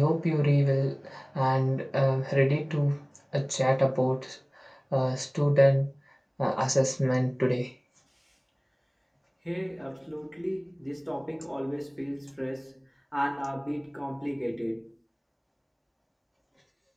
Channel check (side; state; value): both; identical; correlation 1.00